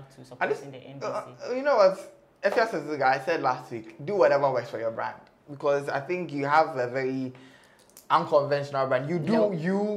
to supporting the NDC. You know what? Afia schwarzeneger, I said last week, do whatever works for your brand. Because I think you have a very unconventional brand. You do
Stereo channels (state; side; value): identical; both; correlation 1.00